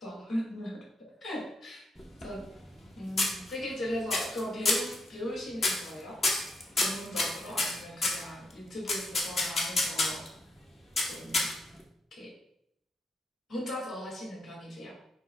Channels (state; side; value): normal; both; correlation 0.77